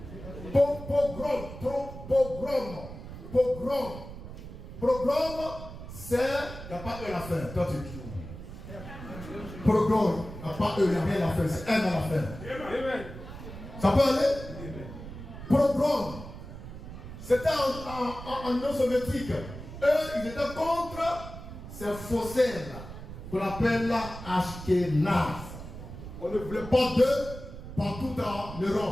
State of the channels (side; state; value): right; noise; rumble, 12 dB below the sound